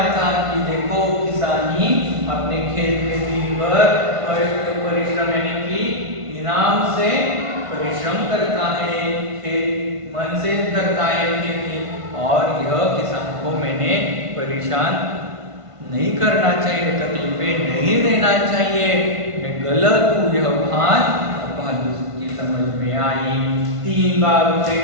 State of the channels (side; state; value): left; late; 1.5 ms